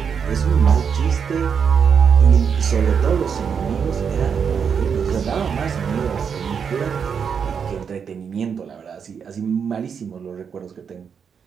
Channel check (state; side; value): quieter; left; 6.8 dB